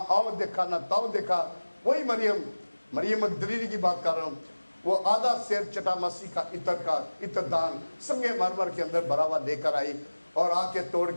देखा ना ताओ देखा। वही मरियम मगदलीनी की बात कर रहा हूं, वो आधा शेर चटा मसीह का इत्रदान संगे मरमर के अंदर भरा हुआ लेकर आई और आके तोड़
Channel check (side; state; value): both; inverted; correlation -1.00